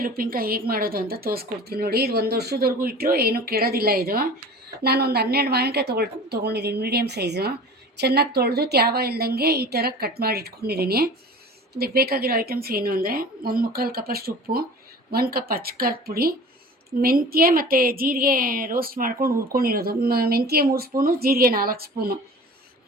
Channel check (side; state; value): both; normal; correlation 0.40